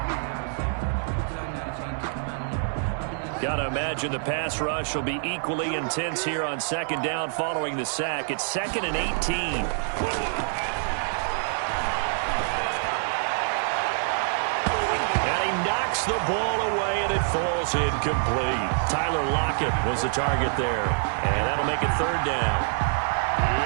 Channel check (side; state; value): left; silent; 57 dB below the other